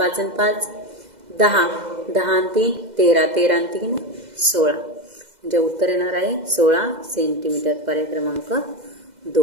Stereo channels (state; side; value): late; left; 2.0 ms